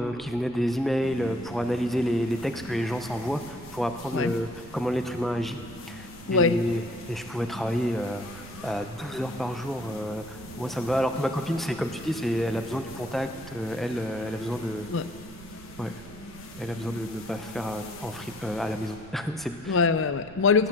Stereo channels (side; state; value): right; noise; rumble, 18 dB below the sound